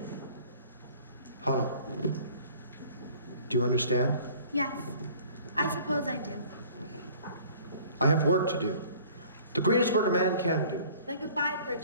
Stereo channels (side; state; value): both; inverted; correlation -0.51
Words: Hodel, do you understand? Yes. I suppose I do. I have work to do. The greatest work a man can do. Then goodbye,